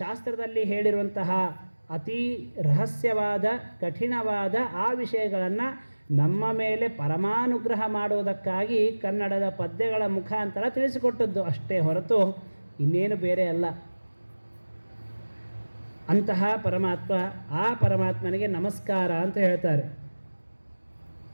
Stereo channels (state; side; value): inverted; both; correlation -1.00